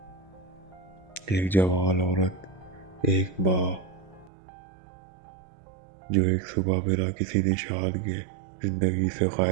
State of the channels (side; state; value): left; drops out; at 4.3 s